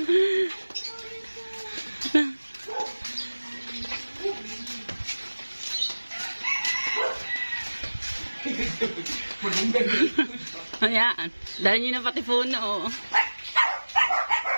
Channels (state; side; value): inverted; both; correlation -1.00